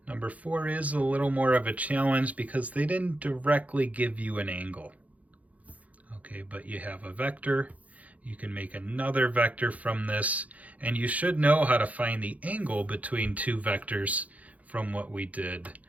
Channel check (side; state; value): left; late; 0.071 ms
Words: Number 4 is a little more of a challenge because they didn't directly give you an angle. Okay, but you have a vector. You can make another vector from this, and you should know how to find the angle between two vectors from what we did